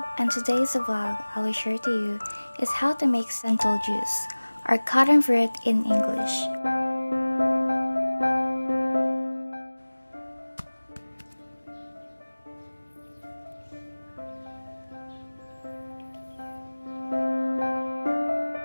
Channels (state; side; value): inverted; both; correlation -1.00